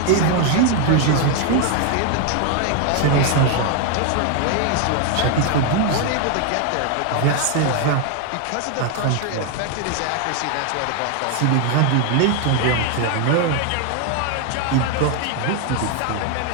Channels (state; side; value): different; both; correlation 0.01